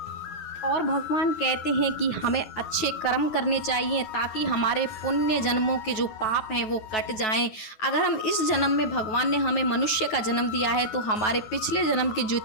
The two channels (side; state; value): right; late; 9.6 ms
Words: और भगवान कहते हैं कि हमें अच्छे कर्म करने चाहिए ताकि हमारे पुण्य जन्मों के जो पाप हैं वो कट जाएं। अगर हम इस जन्म में, भगवान ने हमें मनुष्य का जन्म दिया है तो हमारे पिछले जन्म के